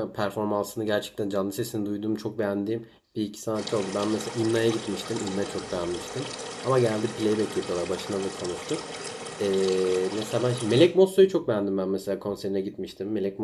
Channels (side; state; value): both; identical; correlation 1.00